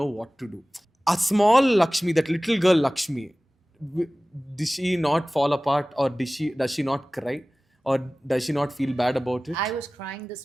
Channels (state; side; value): normal; both; correlation 0.98